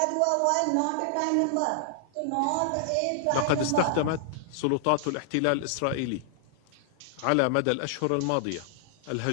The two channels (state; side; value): different; both; correlation -0.01